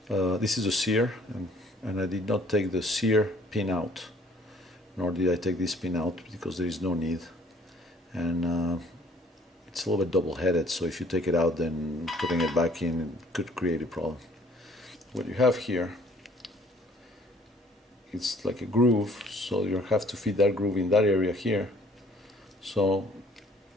this is a sear, and I did not take the sear pin out, nor did I take this pin out because there is no need, and it's a little bit double-headed, so if you take it out, then putting it back in could create a problem. What you have here, it's like a groove, so you have to fit that groove in that area here. So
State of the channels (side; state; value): both; normal; correlation 0.58